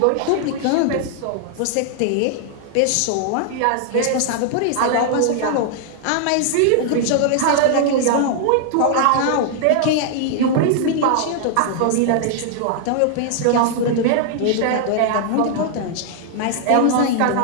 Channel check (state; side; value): different; both; correlation 0.00